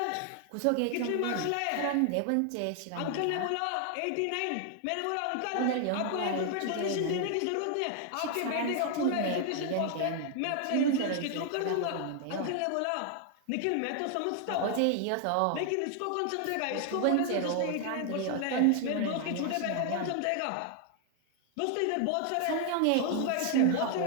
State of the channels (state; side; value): different; both; correlation 0.00